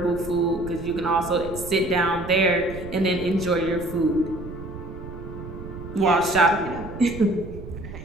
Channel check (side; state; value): right; noise; rumble, 12 dB below the sound